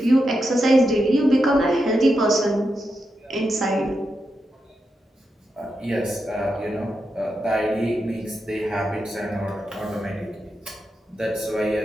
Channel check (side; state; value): both; normal; correlation 0.86